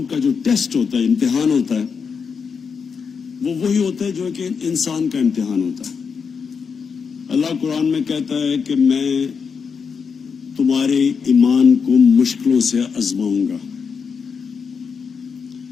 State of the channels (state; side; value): quieter; right; 5.9 dB